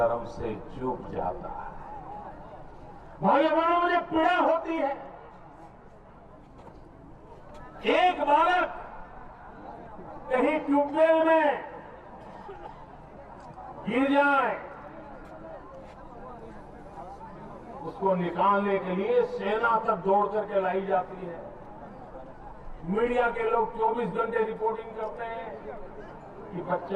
से झुक जाता है। भाइयों बहनों, मुझे पीड़ा होती है। एक बालक कहीं ट्यूबवेल में गिर जाए, उसको निकालने के लिए सेना तक दौड़ करके लाई जाती है। मीडिया के लोग 24 घंटे रिपोर्टिंग करते हैं कि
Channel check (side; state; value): both; identical; correlation 1.00